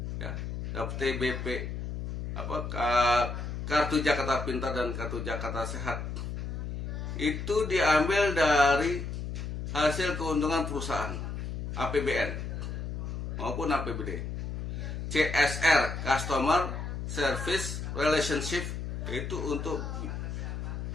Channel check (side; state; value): left; noise; hum, 5 dB below the sound